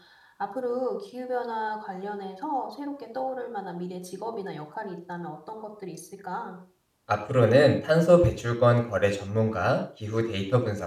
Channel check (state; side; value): identical; both; correlation 1.00